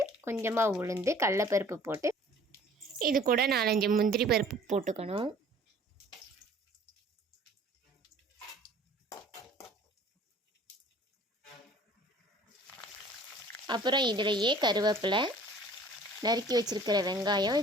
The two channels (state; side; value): normal; both; correlation 0.51